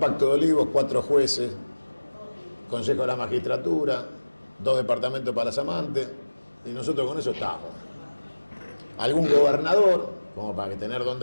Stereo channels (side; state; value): both; inverted; correlation -1.00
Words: de olivos, 4 jueces, Consejo de la Magistratura, 2 departamentos para las amantes, y nosotros con eso estamos. Algún gobernador, como para tener